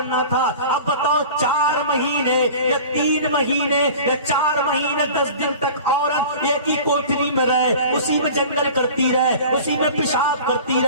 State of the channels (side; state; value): both; inverted; correlation -0.39